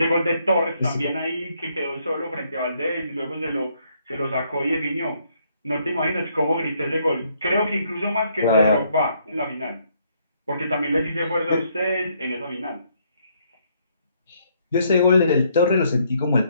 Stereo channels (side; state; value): both; inverted; correlation -0.70